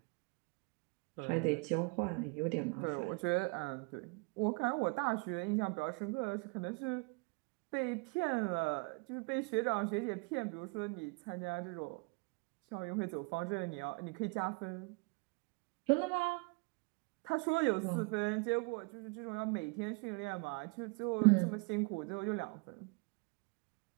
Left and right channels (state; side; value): quieter; left; 31.5 dB